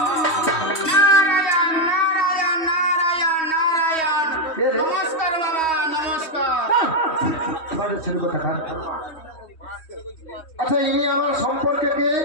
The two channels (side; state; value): right; late; 3.1 ms